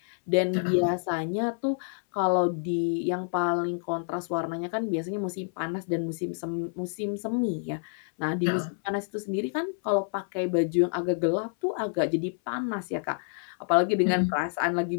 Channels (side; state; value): right; silent; 59 dB below the other